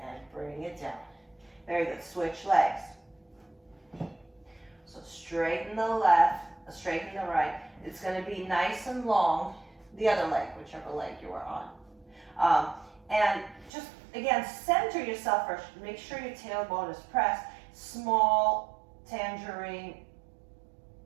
and bring it down. Very good. Switch legs. So straighten the left, straighten the right. It's going to be nice and long. The other leg, whichever leg you are on. And just, again, center yourself first. Make sure your tailbone is pressed. Small tangerine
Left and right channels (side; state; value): left; drops out; at 13.7 s